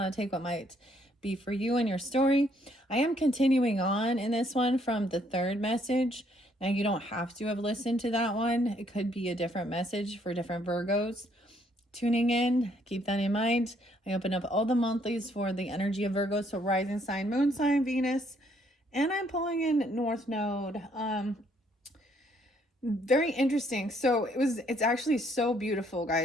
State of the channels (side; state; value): both; normal; correlation 0.68